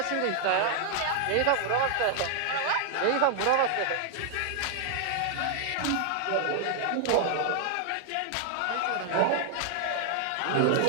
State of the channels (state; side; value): different; both; correlation 0.00